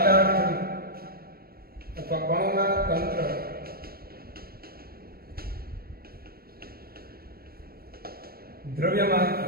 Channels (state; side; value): late; left; 0.44 ms